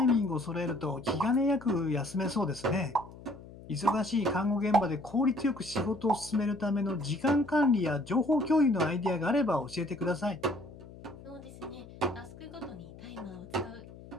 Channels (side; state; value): left; noise; hum, 18 dB below the sound